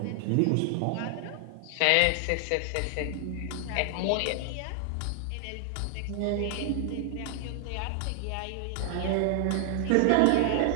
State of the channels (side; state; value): both; different; correlation 0.00